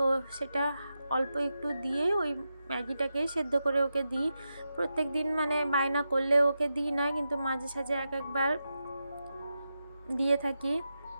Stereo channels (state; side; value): inverted; both; correlation -0.89